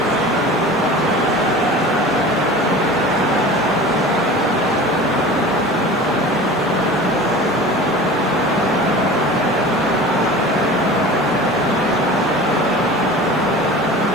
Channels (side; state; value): right; noise; hiss, 28 dB below the sound